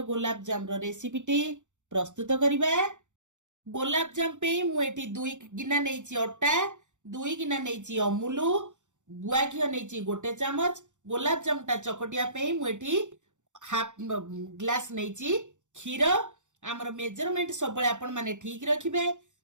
गोलाप जाम रो रेसिपीटी प्रस्तुत करिबा। गोलाप जाम पे मुएठी 2 गिना नेची अट्टा, 2 गिना नेची अमूलु, गुआ घिओ नेची गोटे चामच। गोलाप जामटा चकटिया पे मुएठी हाफ ग्लास नेची क्षीर। आमर मेजरमेंट सब आपण माने ठीक रखिबे।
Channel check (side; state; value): left; late; 0.85 ms